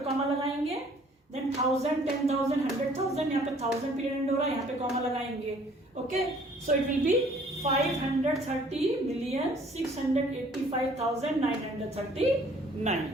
कॉमा लगाएंगे. देन 1000, 10,000, 100,000, यहाँ पे 1000 पीरियड एंड हो रहा है, यहाँ पे कॉमा लगाएंगे. Okay, so it will be 530,685,939.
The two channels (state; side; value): normal; both; correlation 0.57